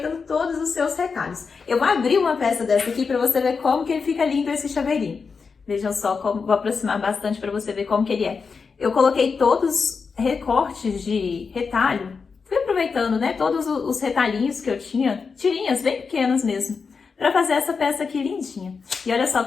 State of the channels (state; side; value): quieter; right; 5.2 dB